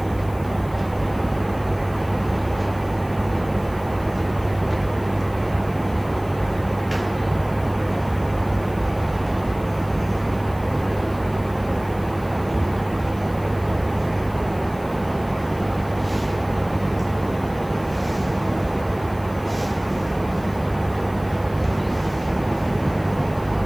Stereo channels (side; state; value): left; noise; hiss, 24 dB below the sound